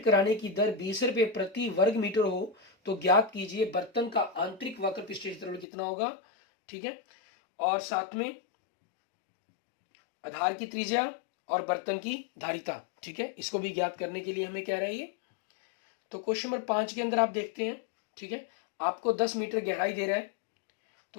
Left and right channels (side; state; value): right; drops out; at 5.7 s